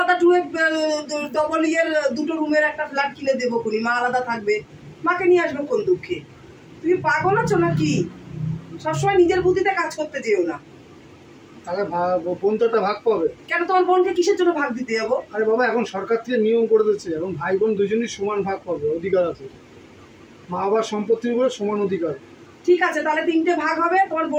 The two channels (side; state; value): both; identical; correlation 1.00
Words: ডবল ইয়ের 2টো রুমের একটা ফ্ল্যাট কিনে দেবো কোনি, মা আলাদা থাকবে। মাকে নিয়ে আসবো কোন দুঃখে? তুমি পাগল আছো নাকি? সবসময় নিজের বুদ্ধিতে কাজ করতে যেও না। তাহলে বোন তো একটা ভাগ পাবে। কেন তোমার বোনকে কিসের জন্য ভাগ দিতে যাবো? আরে বাবা, এখন সরকার থেকে নিয়ম করে দিচ্ছে, এখন ভাই বোন দুজনই সমান ভাগ পাবে, অধিকার আছে। মা বাবার সম্পত্তির উপরে সমান অধিকার। ঠিক আছে, তাহলে 3টে ভাগ হবে, তোমার